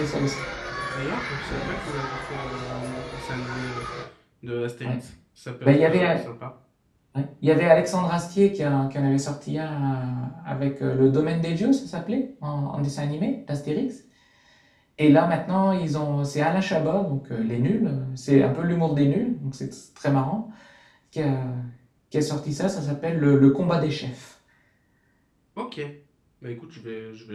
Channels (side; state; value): both; identical; correlation 1.00